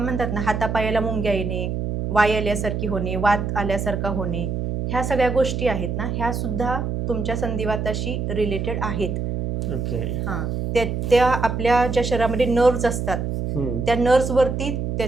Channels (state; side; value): noise; right; hum, 2 dB below the sound